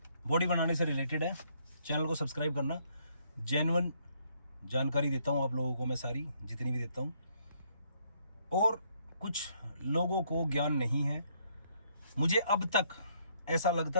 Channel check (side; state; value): both; inverted; correlation -0.69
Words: बॉडी बनाने से रिलेटेड है। चैनल को सब्सक्राइब करना। जेन्युइन जानकारी देता हूँ आप लोगों को, मैं सारी जितनी भी देता हूँ। और कुछ लोगों को ज्ञान नहीं है। मुझे अब तक ऐसा